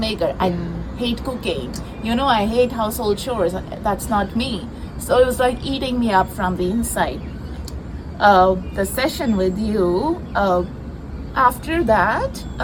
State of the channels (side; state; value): both; identical; correlation 1.00